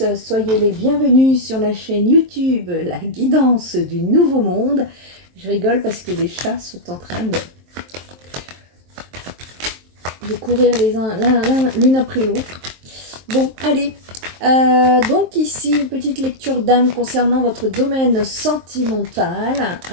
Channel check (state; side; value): late; left; 23 ms